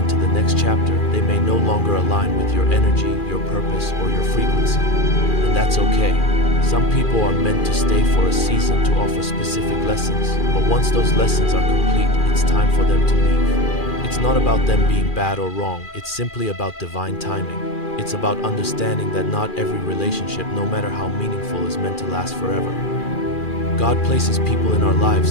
the next chapter, they may no longer align with your energy, your purpose, or your frequency. And that's okay. Some people are meant to stay for a season to offer specific lessons, but once those lessons are complete, it's time for them to leave. It's not about them being bad or wrong, it's simply about divine timing. It's about understanding that not every relationship, no matter how meaningful, is meant to last forever. God places people in our lives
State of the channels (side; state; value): right; late; 2.4 ms